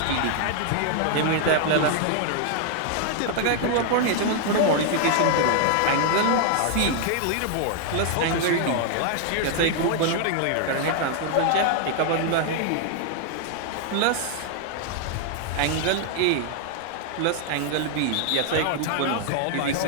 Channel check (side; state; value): both; different; correlation 0.00